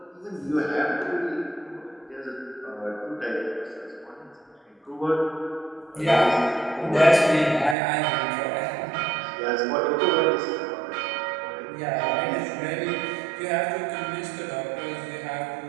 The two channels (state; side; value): drops out; left; at 7.8 s